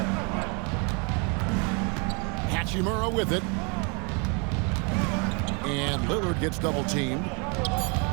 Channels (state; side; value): quieter; left; 34.0 dB